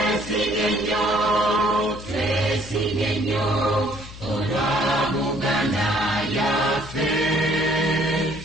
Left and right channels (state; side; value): noise; left; hum, 15 dB below the sound